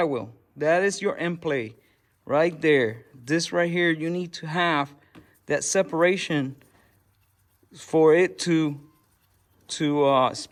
That is your end play right there. This right here, you need to have that separation for it to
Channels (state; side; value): identical; both; correlation 1.00